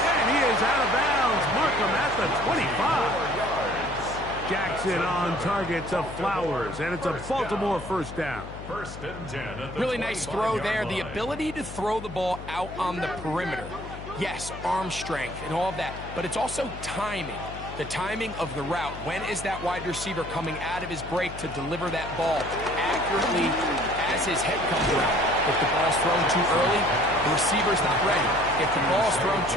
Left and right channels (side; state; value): left; noise; hum, 12 dB below the sound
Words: And he is out of bounds. Markham at the 25. Jackson on target to Flowers, and it's a Baltimore first down. 1st and 10 at the Really nice throw there. The line. ability to throw the ball out on the perimeter. Yes, arm strength and all of that, but it's also timing. The timing of the route. When is that wide receiver coming out of his break to deliver that ball accurately as his head comes around? If the ball's thrown too early, the receiver's not ready. If the ball's thrown